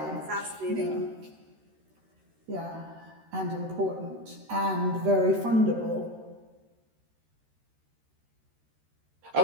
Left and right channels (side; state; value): left; late; 13 ms